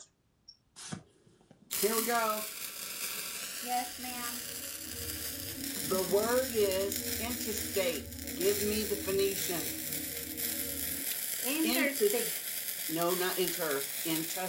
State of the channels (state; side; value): identical; both; correlation 1.00